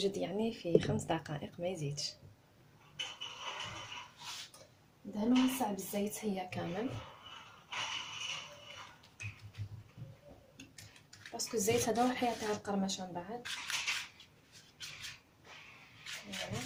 يعني في 5 دقائق ما يزيدش. دهنوها الساعه بالزيت هي كامل، باسكو الزيت هذا هو اللي يعطيها القرمشه من بعد.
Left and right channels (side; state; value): both; identical; correlation 1.00